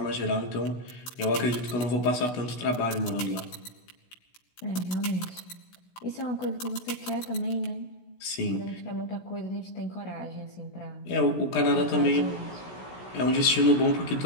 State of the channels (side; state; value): right; late; 16 ms